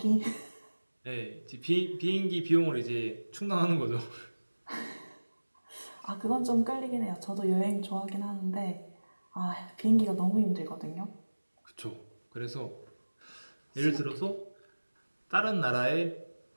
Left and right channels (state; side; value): inverted; both; correlation -1.00